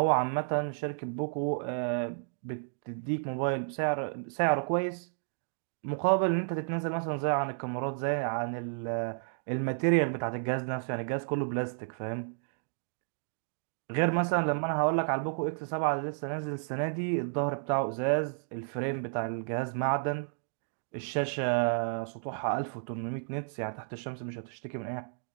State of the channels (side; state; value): left; silent; digital silence